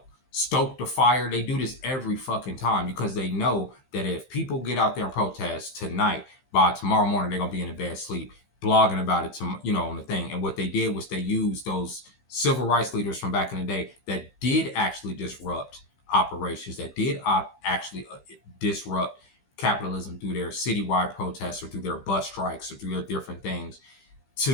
stoke the fire. They do this every fucking time because they know that if people get out there and protest tonight, by tomorrow morning they're gonna be in a bad sleep, blogging about it on the thing. And what they did was they used those civil rights leaders from back in the day that did actually disrupt operations, that did actually disrupt capitalism through their citywide protests or through their bus strikes or through their different things,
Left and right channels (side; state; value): right; late; 15 ms